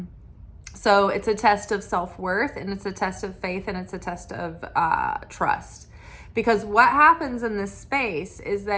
So it's a test of self-worth, and it's a test of faith, and it's a test of trust. Because what happens in this space is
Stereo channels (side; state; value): both; identical; correlation 1.00